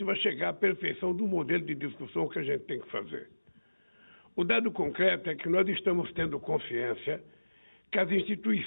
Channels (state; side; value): inverted; both; correlation -1.00